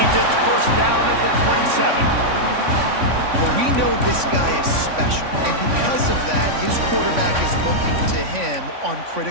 It's 1st down at the 27. Well, we know this guy is special, and because of that, his quarterback is looking to him on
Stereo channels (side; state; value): left; late; 3.5 ms